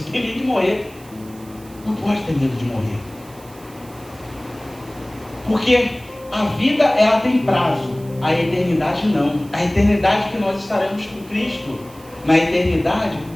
tem medo de morrer. Não pode ter medo de morrer. Porque a vida, ela tem prazo, a eternidade não. A eternidade que nós estaremos com Cristo, na eternidade,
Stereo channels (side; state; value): right; noise; hiss, 23 dB below the sound